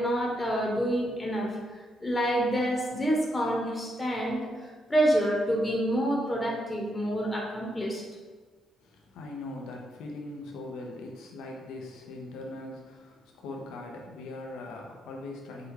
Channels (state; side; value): normal; both; correlation 0.80